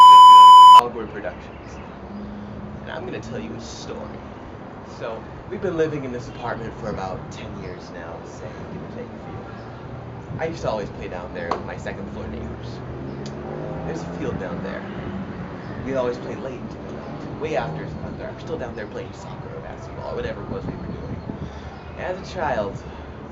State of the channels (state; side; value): identical; both; correlation 1.00